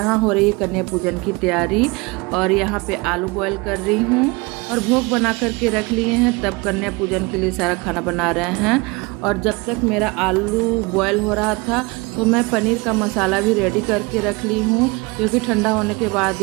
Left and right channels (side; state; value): left; quieter; 26.0 dB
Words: हो रही है कन्या पूजन की तैयारी और यहाँ पे आलू बॉईल कर रही हूँ और भोग बना करके रख लिए हैं। तब कन्या पूजन के लिए सारा खाना बना रहे हैं। और जब तक मेरा आलू बॉईल हो रहा था तो मैं पनीर का मसाला भी रेडी करके रख ली हूँ, क्योंकि ठंडा होने के बाद